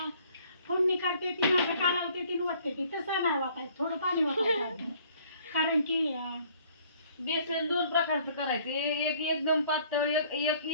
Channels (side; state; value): both; inverted; correlation -0.59